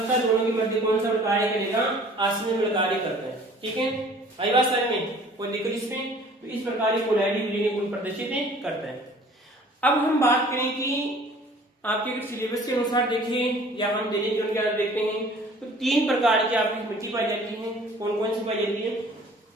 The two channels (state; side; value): normal; both; correlation 0.51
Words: दोनों के मध्य कौन सा कार्य करेगा, आसनिर्मल कार्य करता है। ठीक है, आई बात समझ में, कोई दिक्कत इसमें? तो इस प्रकार पोलैरिटी विलीन गुण प्रदर्शित करता है। अब हम बात करें कि आपके सिलेबस के अनुसार देखें या हम दैनिक जीवन के अंदर देखते हैं तो 3 प्रकार की आपकी मिट्टी पाई जाती है। कौन कौन सी पाई जाती है?